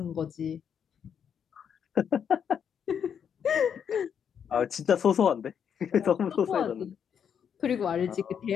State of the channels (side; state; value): right; quieter; 7.8 dB